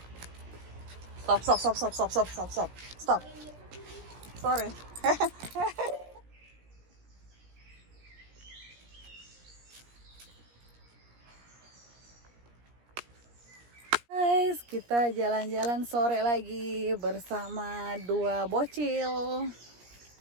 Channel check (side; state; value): left; late; 17 ms